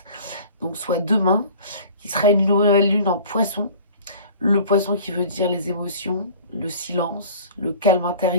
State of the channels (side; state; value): both; inverted; correlation -0.45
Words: donc soit demain, qui sera une nouvelle lune en poisson. Le poisson qui veut dire les émotions, le silence, le calme